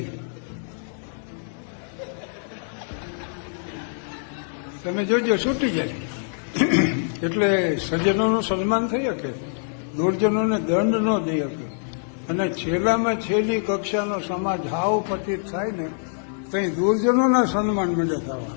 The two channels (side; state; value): right; silent; 62 dB below the other